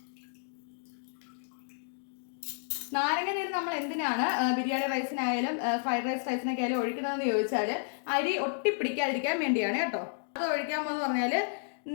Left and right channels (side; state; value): right; silent; digital silence